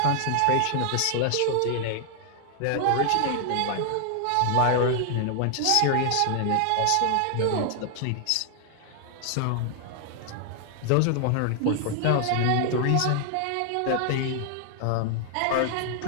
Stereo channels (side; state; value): both; different; correlation 0.00